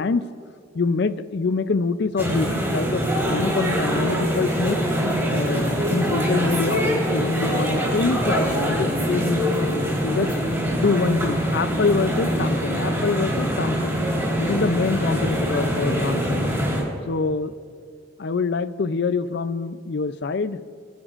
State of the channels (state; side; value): normal; both; correlation 0.50